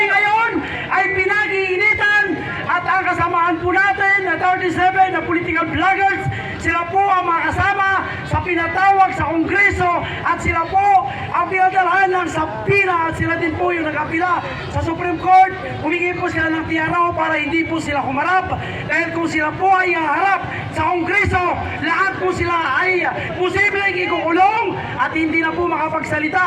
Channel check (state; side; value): identical; both; correlation 1.00